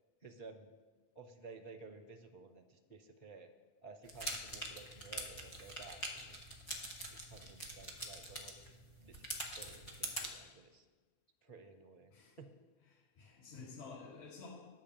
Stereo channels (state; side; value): late; right; 5.1 ms